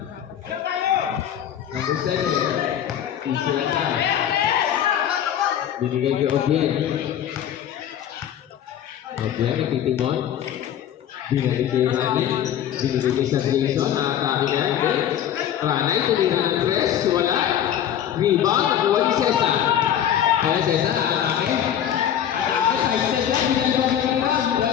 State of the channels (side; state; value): right; quieter; 10.2 dB